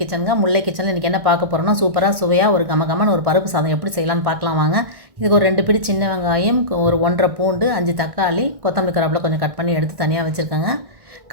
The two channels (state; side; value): late; left; 1.6 ms